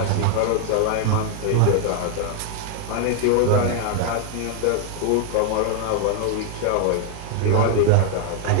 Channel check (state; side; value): different; both; correlation 0.00